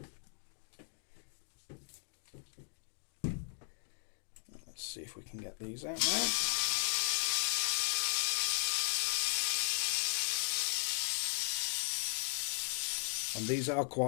Let's see if we can get these out now. And these are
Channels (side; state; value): right; silent; digital silence